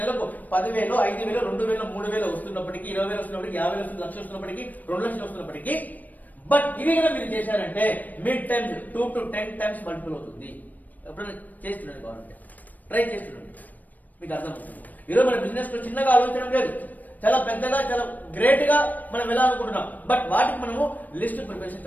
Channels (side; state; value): right; late; 0.082 ms